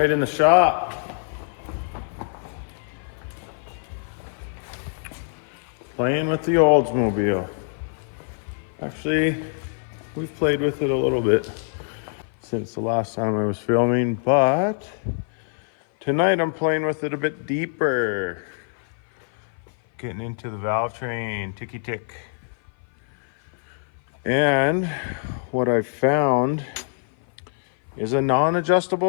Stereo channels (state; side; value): silent; right; 56 dB below the other